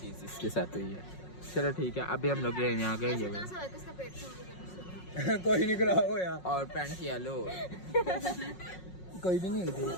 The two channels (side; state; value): right; late; 5.5 ms